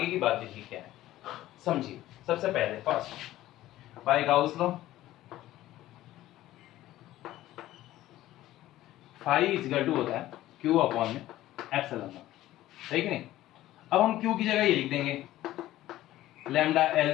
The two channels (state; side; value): quieter; right; 15.0 dB